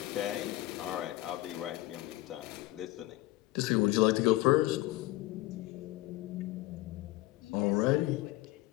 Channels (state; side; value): quieter; right; 17.9 dB